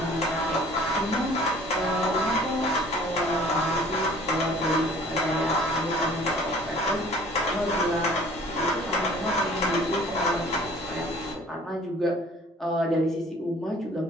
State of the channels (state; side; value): normal; both; correlation 0.52